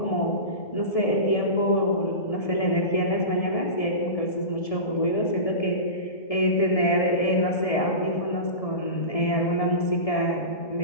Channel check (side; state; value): right; late; 1.7 ms